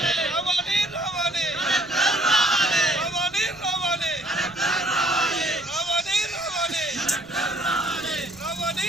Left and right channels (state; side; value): noise; right; rumble, 24 dB below the sound